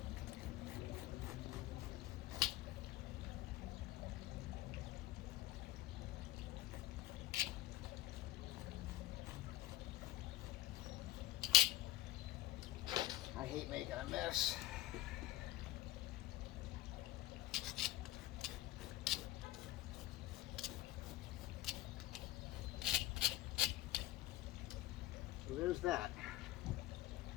I hate making a mess. So there's that.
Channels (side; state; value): right; quieter; 16.3 dB